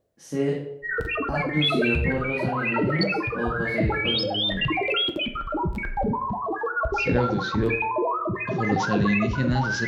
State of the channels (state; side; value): identical; both; correlation 1.00